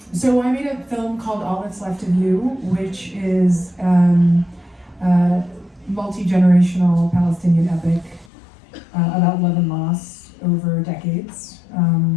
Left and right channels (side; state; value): right; drops out; at 8.3 s